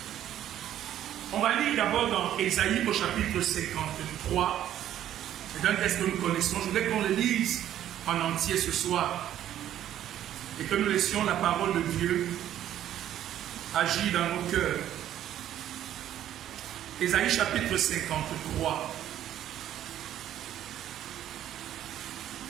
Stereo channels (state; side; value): quieter; left; 11.6 dB